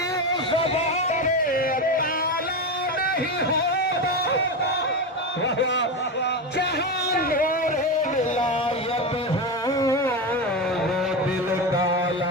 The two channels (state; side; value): normal; both; correlation 0.17